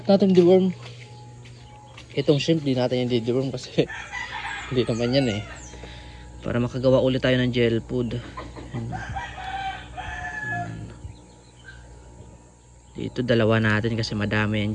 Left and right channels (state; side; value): identical; both; correlation 1.00